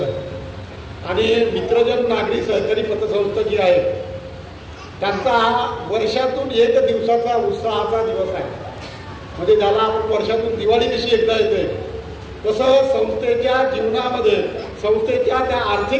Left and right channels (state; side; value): identical; both; correlation 1.00